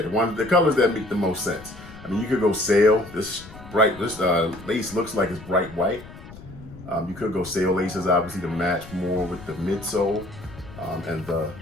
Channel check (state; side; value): noise; left; rumble, 17 dB below the sound